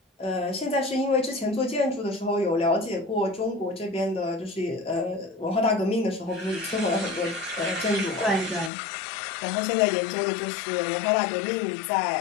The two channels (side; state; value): right; drops out; at 8.7 s